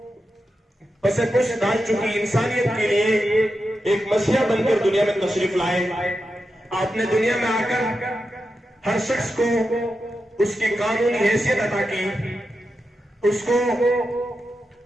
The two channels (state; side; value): normal; both; correlation 0.89